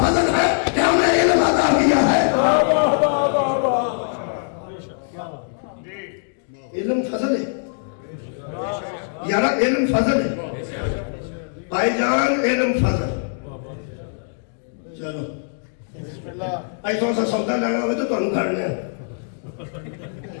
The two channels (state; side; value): silent; right; digital silence